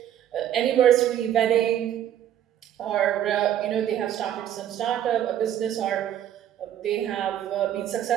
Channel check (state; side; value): quieter; left; 10.9 dB